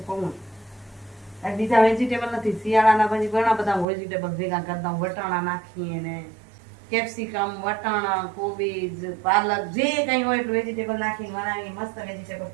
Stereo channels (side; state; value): left; drops out; at 3.9 s